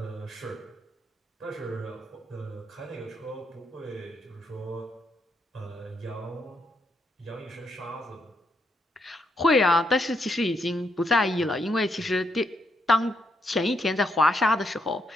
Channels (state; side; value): normal; both; correlation 0.78